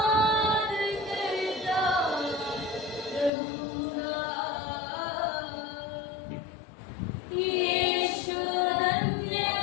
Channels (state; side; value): drops out; right; at 3.3 s